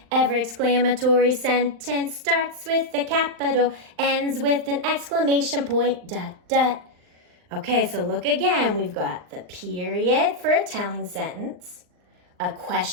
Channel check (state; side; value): late; left; 39 ms